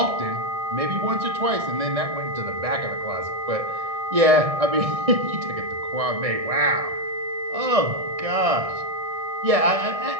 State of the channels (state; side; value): late; left; 1.6 ms